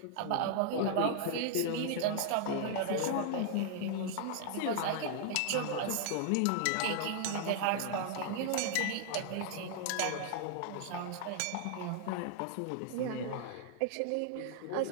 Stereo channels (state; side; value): different; both; correlation -0.01